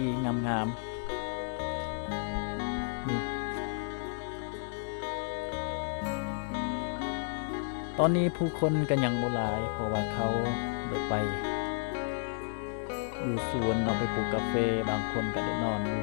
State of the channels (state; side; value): silent; right; digital silence